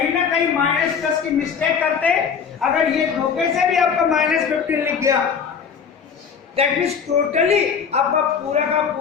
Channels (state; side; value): quieter; right; 6.6 dB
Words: ना कहीं -+ की मिस्टेक करते। अगर ये धोखे से भी आपका -15 लिख गया दैट मींस टोटली आपका पूरा का